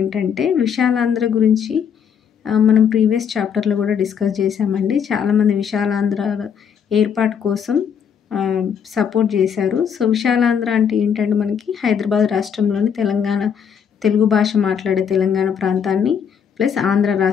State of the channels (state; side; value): quieter; right; 7.6 dB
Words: విశాలాంధ్ర గురించి మనం ప్రీవియస్ చాప్టర్లో కూడా డిస్కస్ చేశామండి. చాలామంది విశాలాంధ్ర ఏర్పాటు కోసం సపోర్ట్ చేశారు. సో విశాలాంధ్ర అంటే ఏంటంటే మనకి హైదరాబాద్ రాష్ట్రంలోని తెలుగు భాష మాట్లాడే తెలంగాణ ప్రాంతాన్ని ప్లస్ ఆంధ్ర